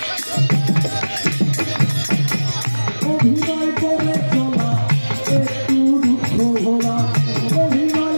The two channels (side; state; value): both; inverted; correlation -1.00